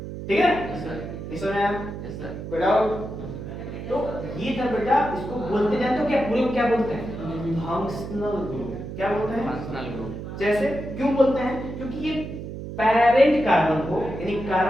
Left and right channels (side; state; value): right; noise; hum, 8 dB below the sound